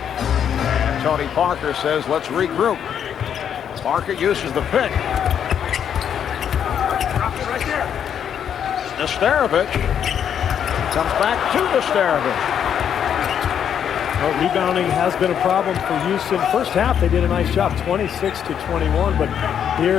And Tony Parker says, let's regroup. Parker uses the pick. Right there. Nesterovic comes back to Nesterovic. Well, rebounding has been a problem for Houston. First half, they did a nice job, 26-21, but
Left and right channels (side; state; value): right; quieter; 8.7 dB